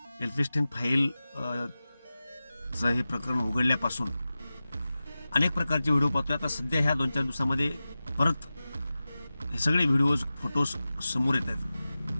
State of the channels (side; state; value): both; inverted; correlation -0.95